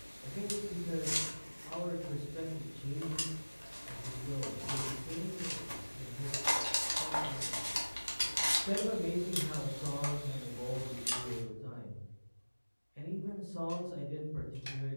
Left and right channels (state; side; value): inverted; both; correlation -1.00